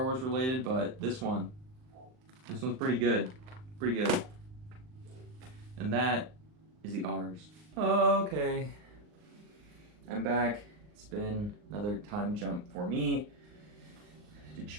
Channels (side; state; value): left; late; 39 ms